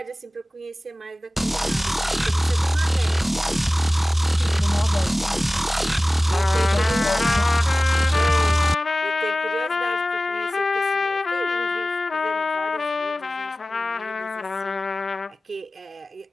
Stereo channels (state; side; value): normal; both; correlation 0.96